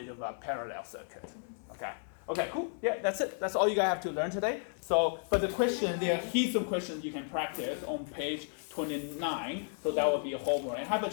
of a parallel circuit, okay? Okay, cool, yeah, that's it. That's all you guys have to learn today. So, but the question, there are heaps of questions you can practice on page 29, so that will be a homework. And have a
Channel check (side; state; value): right; silent; 55 dB below the other